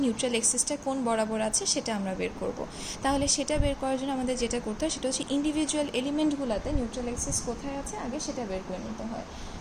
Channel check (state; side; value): identical; both; correlation 1.00